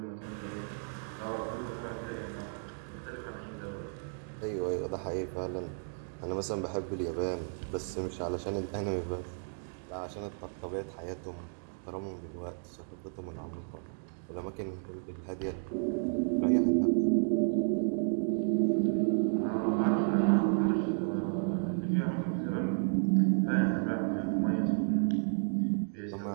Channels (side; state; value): left; silent; 56 dB below the other